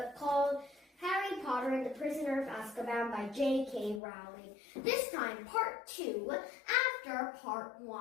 called Harry Potter and the Prisoner of Azkaban by J.K. Rowling. This time, part 2, after part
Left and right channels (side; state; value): right; drops out; at 4.0 s